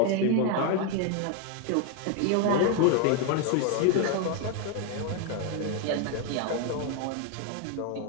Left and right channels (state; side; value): different; both; correlation 0.01